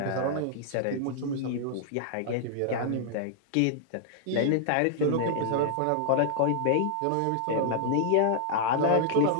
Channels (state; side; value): different; both; correlation -0.01